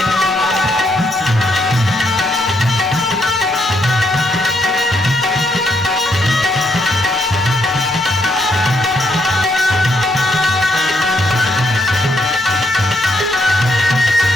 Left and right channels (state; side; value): normal; both; correlation 0.75